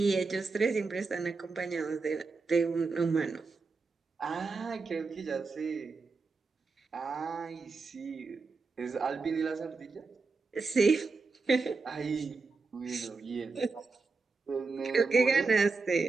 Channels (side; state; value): left; quieter; 4.2 dB